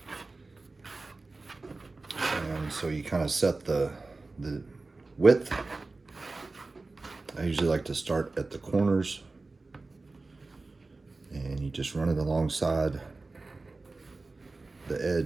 And so you kind of set the width. I usually like to start at the corners, and you just run it alongside the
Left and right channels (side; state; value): left; quieter; 3.5 dB